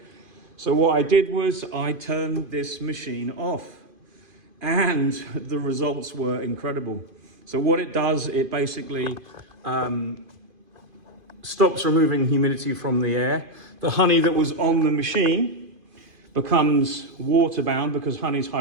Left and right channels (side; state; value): left; late; 2.5 ms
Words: So what I did was I turned this machine off, and the results were incredible. So what it does, it basically stops removing humidity from the air. The honey that was on the machine becomes water-bound because honey's